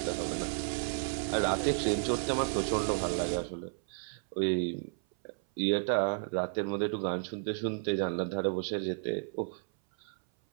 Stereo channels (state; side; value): silent; left; 56 dB below the other